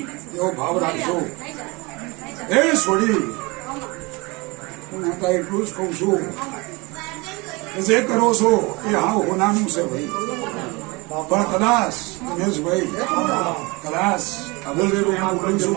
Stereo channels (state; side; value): quieter; left; 26.0 dB